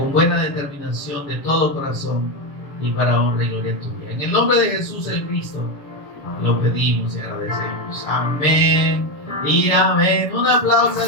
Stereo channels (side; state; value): right; late; 7.0 ms